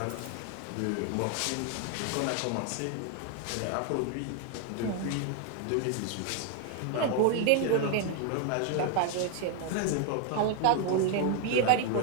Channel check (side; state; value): both; different; correlation 0.01